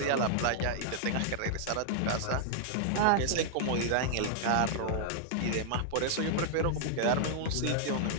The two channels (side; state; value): both; different; correlation -0.01